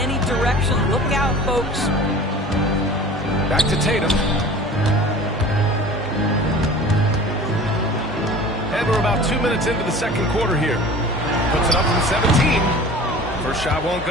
direction. Look out, folks. Back to Tatum. And we're about 2 minutes into the second quarter here. Puts it up from 17. First shot won't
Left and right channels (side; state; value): both; normal; correlation 0.41